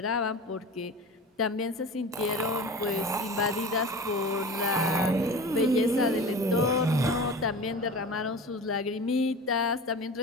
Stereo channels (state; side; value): normal; both; correlation 0.35